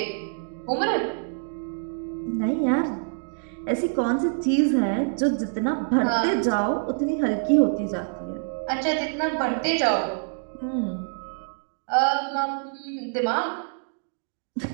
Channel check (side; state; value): left; silent; digital silence